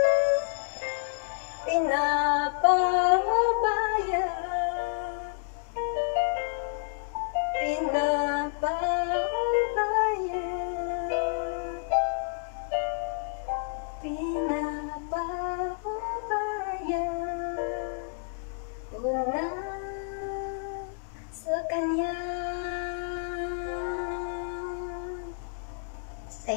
Pinapahubaya, pinapahubaya, pinapahubaya ko na sa kanya.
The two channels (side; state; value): right; silent; digital silence